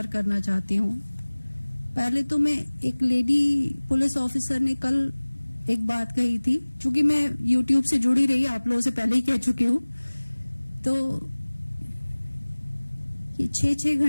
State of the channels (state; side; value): inverted; both; correlation -1.00